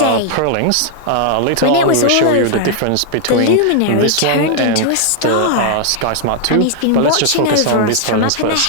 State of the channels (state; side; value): different; both; correlation 0.00